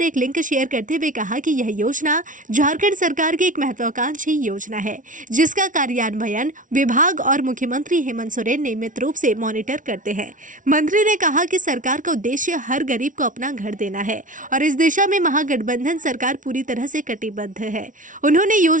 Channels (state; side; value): late; left; 0.38 ms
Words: एक लिंक शेयर करते हुए कहा कि यह योजना झारखंड सरकार की एक महत्वाकांक्षी योजना है, जिसका कार्यान्वयन विभाग और मुख्यमंत्री हेमंत सोरेन नियमित रूप से मॉनिटर करते हैं। मंत्री ने कहा कि सरकार का उद्देश्य हर गरीब को अपना घर देना है और इस दिशा में महागठबंधन सरकार पूरी तरह से कटिबद्ध है। उन्होंने